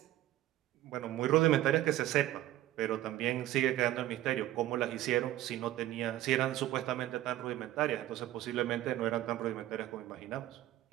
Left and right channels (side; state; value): left; quieter; 14.5 dB